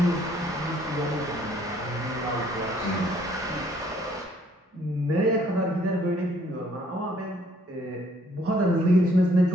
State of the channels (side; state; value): both; normal; correlation 0.63